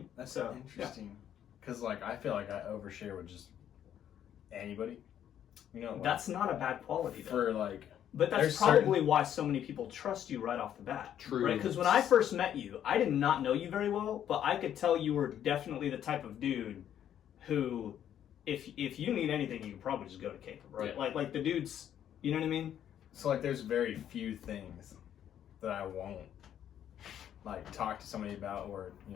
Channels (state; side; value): quieter; right; 10.2 dB